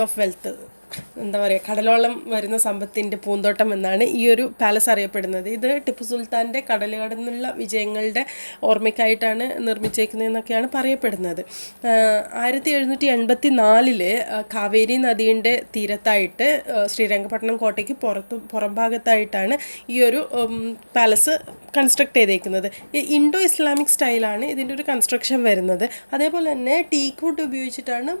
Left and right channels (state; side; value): inverted; both; correlation -1.00